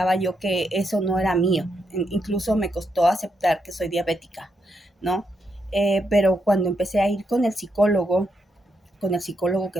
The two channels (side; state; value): both; normal; correlation 0.80